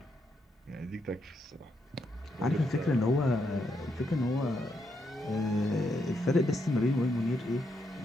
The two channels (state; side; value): normal; both; correlation 0.80